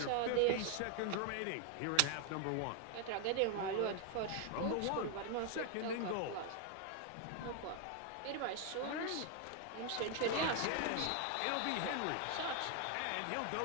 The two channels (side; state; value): both; different; correlation 0.00